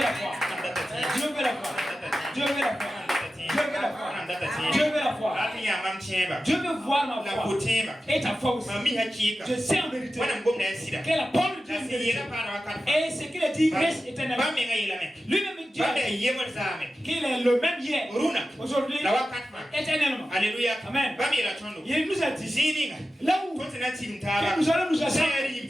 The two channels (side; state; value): both; normal; correlation 0.93